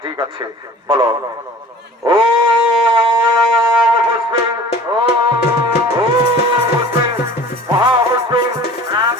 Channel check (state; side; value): normal; both; correlation 0.45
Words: ঠিক আছে বলো। ও